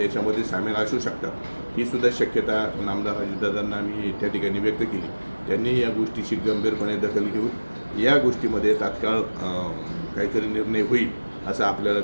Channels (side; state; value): both; inverted; correlation -1.00